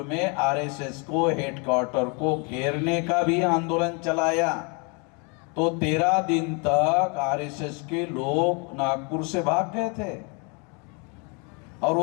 में RSS को, हेडक्वार्टर को घेरने का भी आंदोलन चलाया। तो 13 दिन तक RSS के लोग नागपुर से भाग गए थे, और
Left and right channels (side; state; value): right; quieter; 33.7 dB